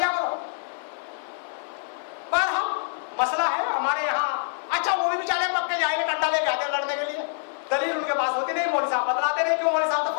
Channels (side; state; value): right; silent; 61 dB below the other